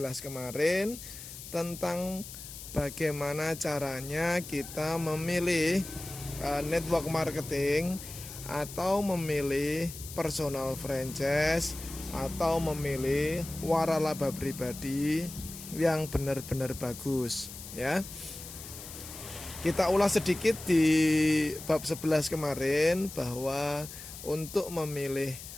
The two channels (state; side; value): noise; left; hiss, 12 dB below the sound